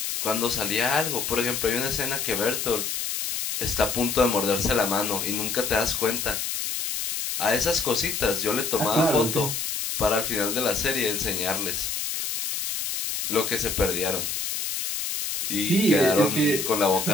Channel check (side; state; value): left; noise; hiss, 3 dB below the sound